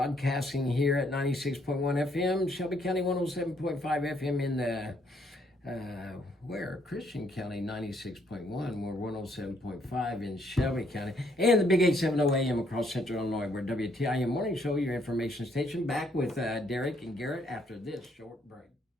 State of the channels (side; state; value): both; normal; correlation 0.69